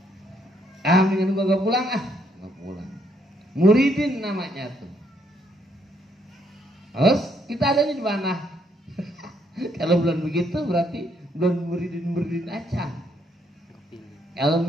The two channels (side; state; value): both; normal; correlation 0.72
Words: mendingan gua gak pulang gak pulang. Muridin namanya tuh. Terus kita adanya di mana? Kalau belum begitu berarti belum muridin aja. Kalau